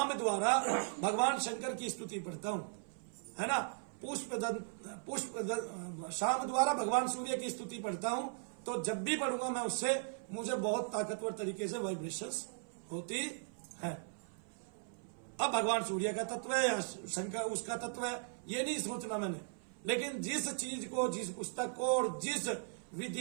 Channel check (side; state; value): left; silent; 52 dB below the other